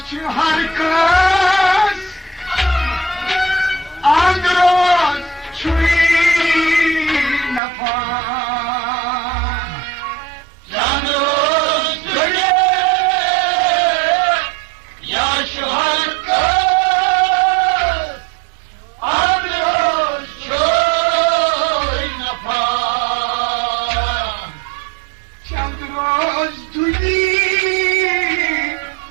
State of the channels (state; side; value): drops out; left; at 7.6 s